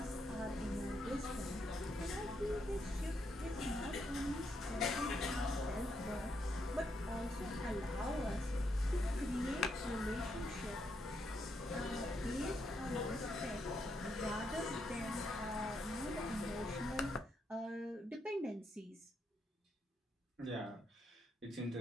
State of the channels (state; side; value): normal; both; correlation 0.79